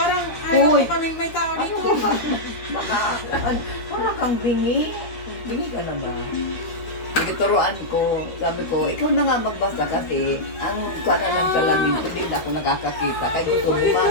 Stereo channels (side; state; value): right; late; 13 ms